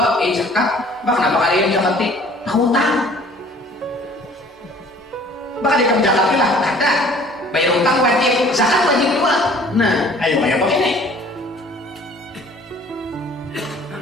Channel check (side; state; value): both; normal; correlation 0.53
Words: zakat, kenapa kalian zakati? Hutang. Bakal di zakati lah, ada. Bayar utang wajib, zakat wajib juga. Nah, ayo bayar pakai ini.